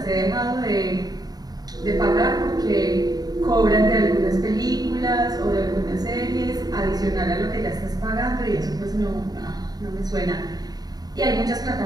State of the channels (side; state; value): left; late; 0.19 ms